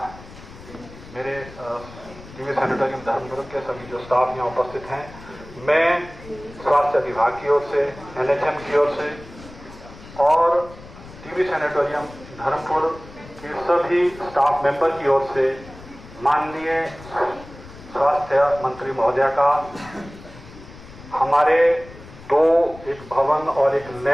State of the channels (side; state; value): left; noise; rumble, 18 dB below the sound